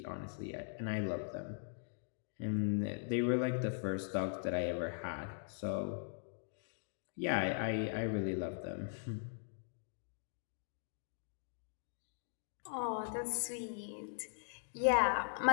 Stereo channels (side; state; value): right; silent; digital silence